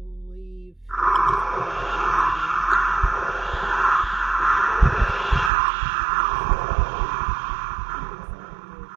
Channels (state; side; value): drops out; left; at 5.5 s